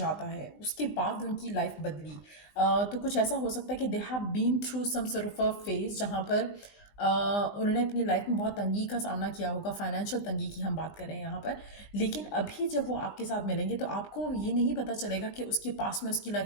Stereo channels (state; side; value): late; right; 20 ms